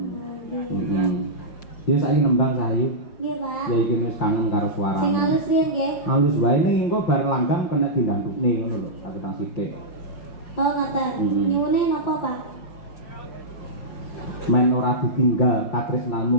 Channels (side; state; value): right; late; 5.7 ms